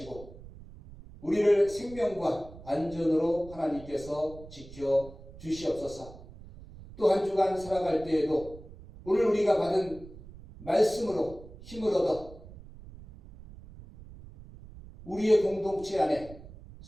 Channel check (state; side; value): noise; right; rumble, 17 dB below the sound